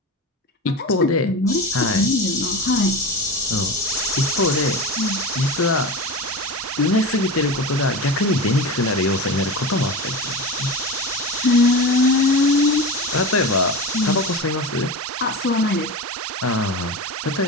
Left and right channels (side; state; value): both; normal; correlation 0.27